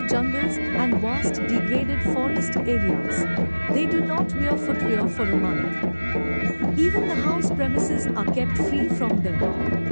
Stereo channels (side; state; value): both; inverted; correlation -1.00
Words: jungles and vast degraded forest areas. They do not wear footwear for a month. Even the house premises are kept free from them.